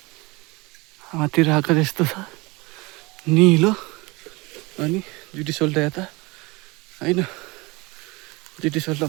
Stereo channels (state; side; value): quieter; left; 24.5 dB